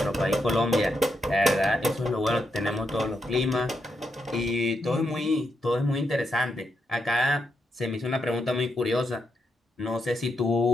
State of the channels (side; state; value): both; normal; correlation 0.82